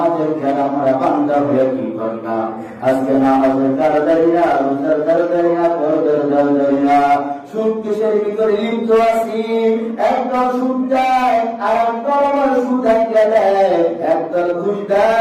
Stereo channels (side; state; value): both; identical; correlation 1.00